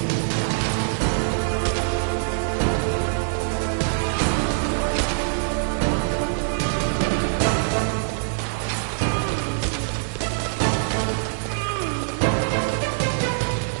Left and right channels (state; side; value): silent; left; digital silence